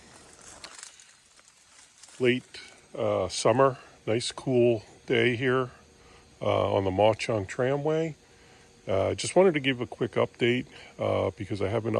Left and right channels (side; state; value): both; identical; correlation 1.00